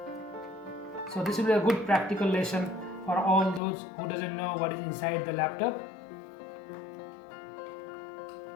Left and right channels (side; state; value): right; drops out; at 3.6 s